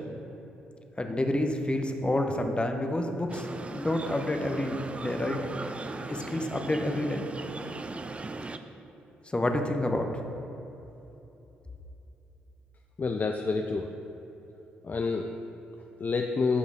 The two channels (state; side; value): normal; both; correlation 0.85